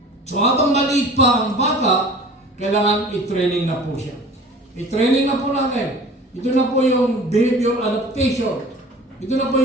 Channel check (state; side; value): normal; both; correlation 0.43